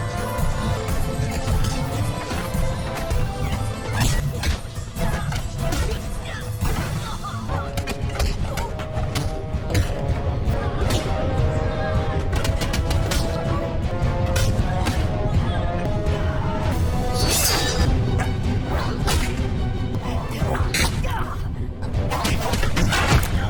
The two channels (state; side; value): identical; both; correlation 1.00